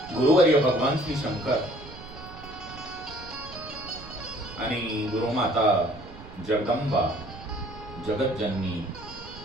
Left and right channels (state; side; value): noise; right; rumble, 16 dB below the sound